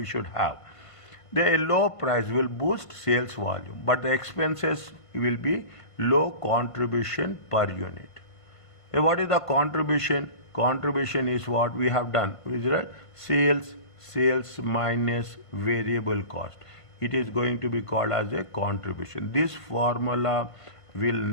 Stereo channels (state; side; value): late; right; 1.5 ms